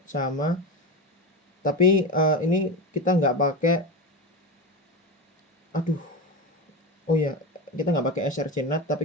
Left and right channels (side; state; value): both; normal; correlation 0.20